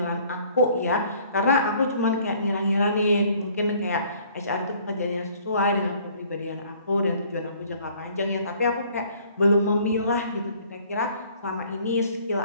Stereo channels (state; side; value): inverted; both; correlation -0.57